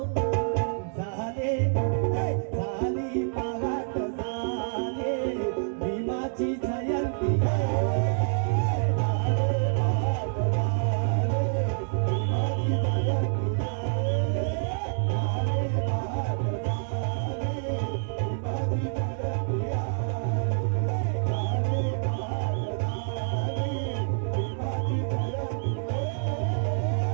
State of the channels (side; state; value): left; silent; digital silence